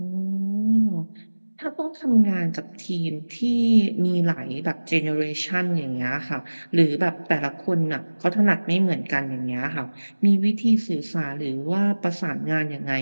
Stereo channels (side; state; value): both; inverted; correlation -1.00